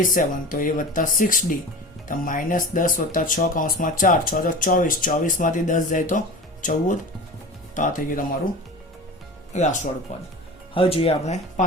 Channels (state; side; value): normal; both; correlation 0.34